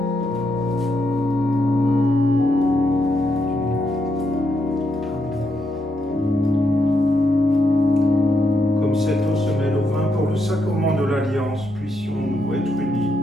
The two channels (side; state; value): both; normal; correlation 0.81